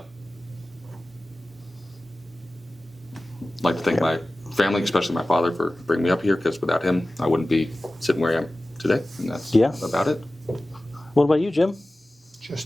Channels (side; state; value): both; normal; correlation 0.97